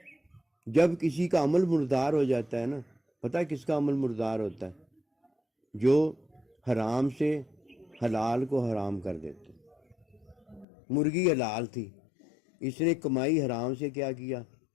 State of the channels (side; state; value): right; drops out; at 10.7 s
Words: جب کسی کا عمل مردار ہو جاتا ہے نا، پتہ کس کا عمل مردار ہوتا ہے؟ جو حرام سے حلال کو حرام کر دیتے۔ مرغی حلال تھی، اس نے کمائی حرام سے کیا کیا؟